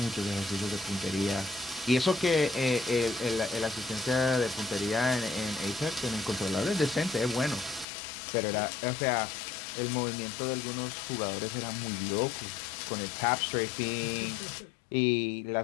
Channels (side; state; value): right; drops out; at 7.9 s